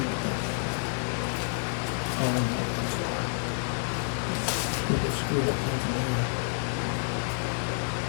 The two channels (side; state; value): right; silent; 58 dB below the other